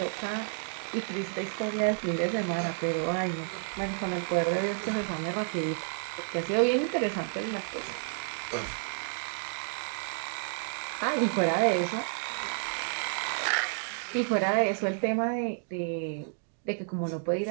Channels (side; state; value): left; silent; digital silence